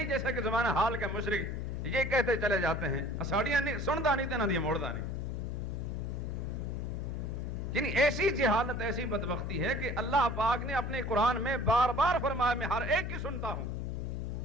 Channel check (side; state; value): left; noise; hum, 4 dB below the sound